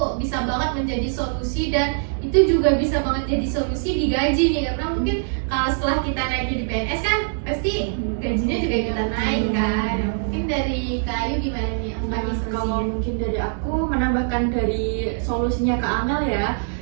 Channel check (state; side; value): silent; left; digital silence